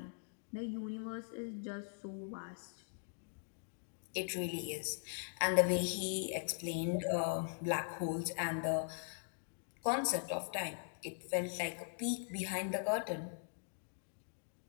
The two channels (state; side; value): silent; right; digital silence